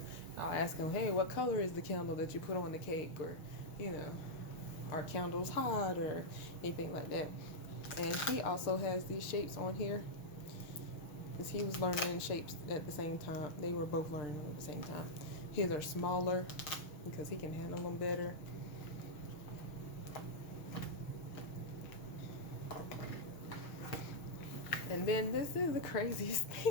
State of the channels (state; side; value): late; right; 6.4 ms